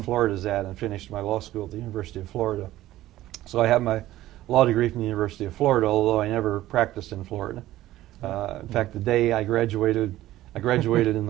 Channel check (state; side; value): quieter; left; 15.1 dB